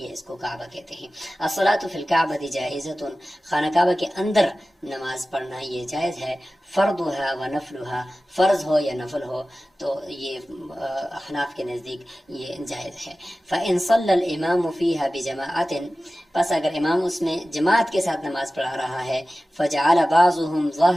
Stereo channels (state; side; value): normal; both; correlation 0.96